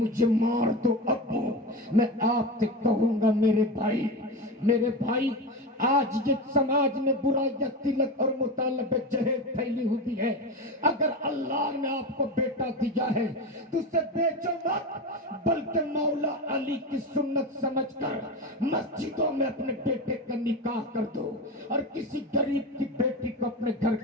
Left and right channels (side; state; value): both; normal; correlation 0.22